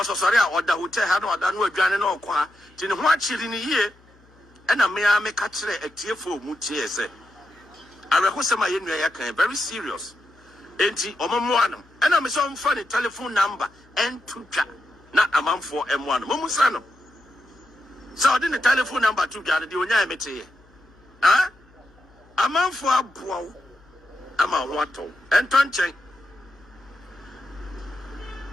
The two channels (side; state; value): left; noise; hum, 29 dB below the sound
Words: osore a oda hotel ha na oda no adwane na okwa ti ne ho achiri ni yie ena me a me ka kire atiefo mu tie se arehosema ye nua ya kan very serious enti omomo anam ena me so mfa ne telephone number and to twa na amanfo emo anam musa no So I didn't telephone number to gather the onya emete. Ah? A man for a bow. Ama wato. And tonchen.